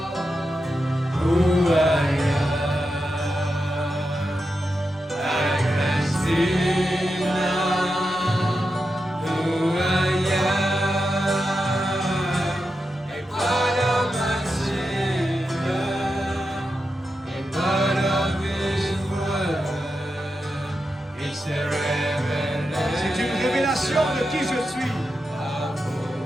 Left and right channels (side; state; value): both; normal; correlation 0.88